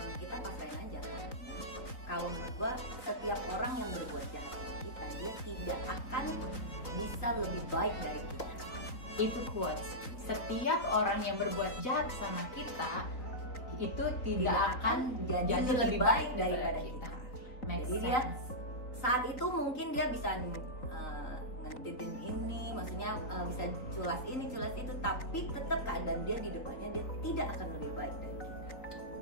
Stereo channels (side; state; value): right; late; 3.9 ms